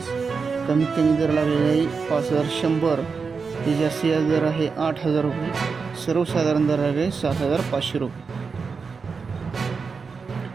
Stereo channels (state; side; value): quieter; left; 5.1 dB